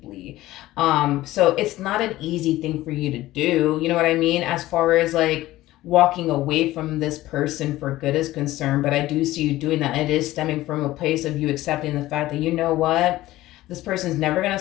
So it's not an easy thing for you to do. You know what I mean? As far as like walking away from this person for good is concerned, but I do see you doing that. And it is stemming from a place of you accepting the fact that, you know what, this person's never going to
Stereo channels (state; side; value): quieter; right; 16.5 dB